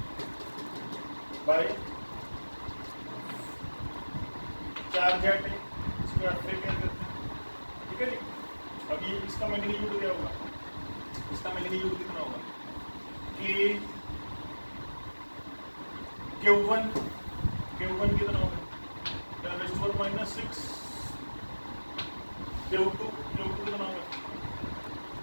by charge at A. इसको आप क्या करते हैं? ठीक है जी। अब ये इसका मैग्नीट्यूड क्या होगा? इसका मैग्नीट्यूड कितना होगा? कि Q1 कितना होगा? 10⁻⁻6 Q2 कितना होगा?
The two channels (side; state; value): both; inverted; correlation -1.00